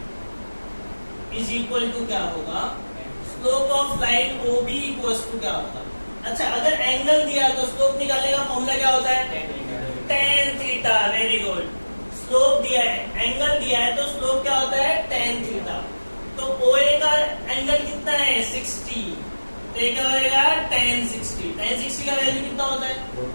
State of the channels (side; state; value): both; inverted; correlation -1.00